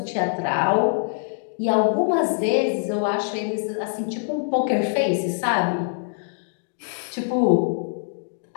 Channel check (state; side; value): silent; right; digital silence